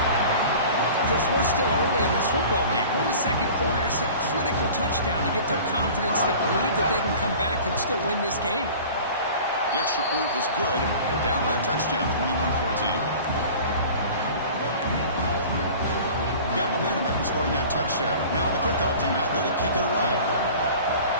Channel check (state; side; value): inverted; both; correlation -0.42